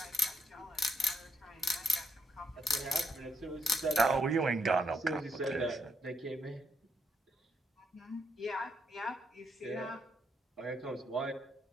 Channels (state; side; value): normal; both; correlation 0.77